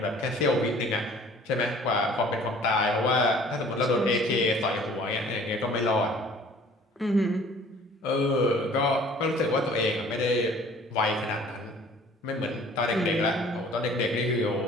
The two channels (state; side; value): normal; both; correlation 0.51